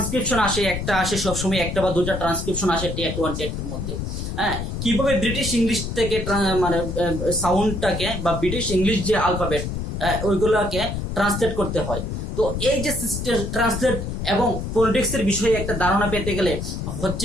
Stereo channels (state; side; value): noise; left; rumble, 4 dB below the sound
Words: আসে, একটা আসে সবসময়, একটা বা দুটা ট্রান্সক্রিপশন আসে টেট 1 টেট 2 এর মধ্যে। হ্যাঁ, কিভাবে ব্রিটিশ ইংলিশ থেকে মানে সাউন্ডটাকে বা ব্রিটিশ ইংলিশ যে আলফাবেট ওইগুলোকে ট্রান্সলেট করতে হয়। তো এই যে সিস্টেম ট্রান্সলেট এবং পলিটিক্সের বিষয়ে একটা ধারণা পেতে গেলে